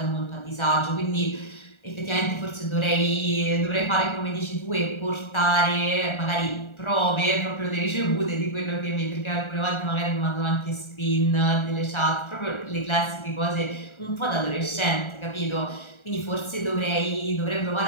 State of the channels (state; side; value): late; right; 1.4 ms